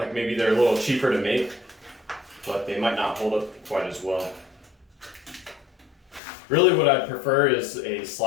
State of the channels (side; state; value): right; drops out; at 6.2 s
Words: maybe they're a little cheaper to make, but they might not hold up quite as well. Really what I'd prefer is a